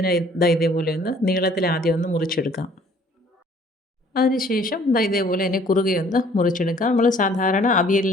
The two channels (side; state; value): both; normal; correlation 0.57